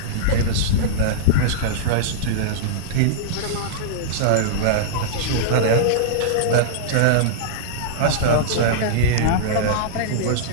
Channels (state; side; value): different; both; correlation -0.03